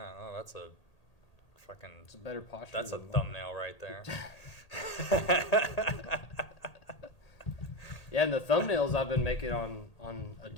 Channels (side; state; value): right; late; 1.8 ms